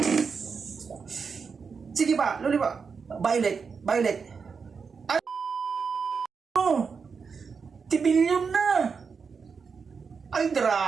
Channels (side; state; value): left; quieter; 5.5 dB